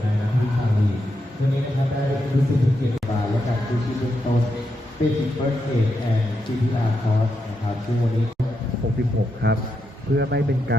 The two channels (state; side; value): normal; both; correlation 0.84